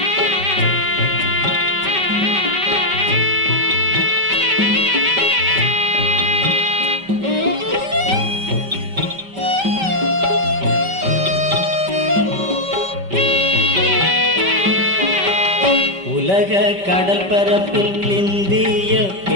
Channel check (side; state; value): left; late; 5.2 ms